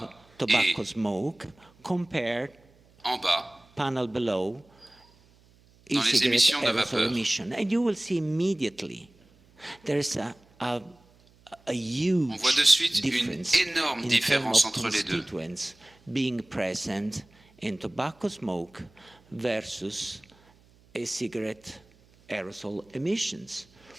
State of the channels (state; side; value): noise; right; hum, 30 dB below the sound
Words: et en bas dans les émissions de vapeur. On voit de suite une énorme différence entre les deux. Being present in tobacco smoke versus e-cigarette aerosol emissions.